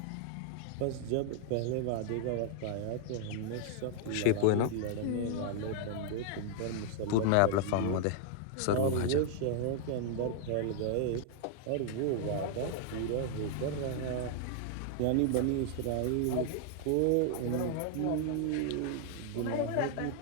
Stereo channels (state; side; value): different; both; correlation 0.00